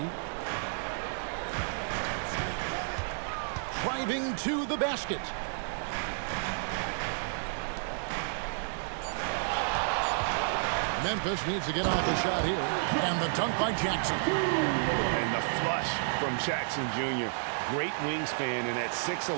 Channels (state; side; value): silent; left; digital silence